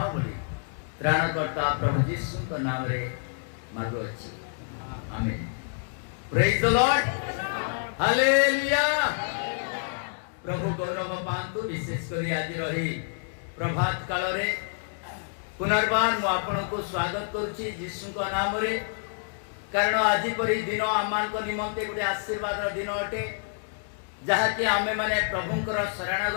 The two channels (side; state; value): right; silent; digital silence